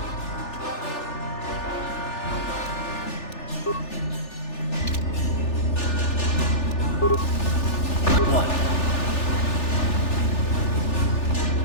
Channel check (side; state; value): right; late; 3.4 ms